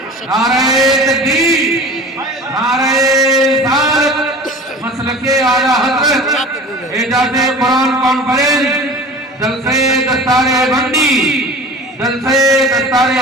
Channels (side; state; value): both; normal; correlation 0.39